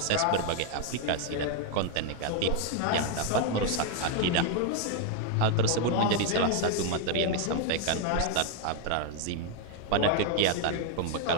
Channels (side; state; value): both; different; correlation 0.01